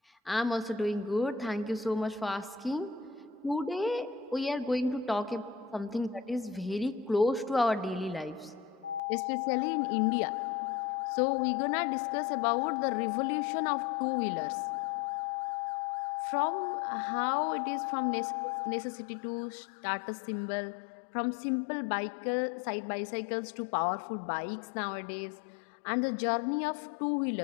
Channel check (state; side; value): drops out; right; at 9.0 s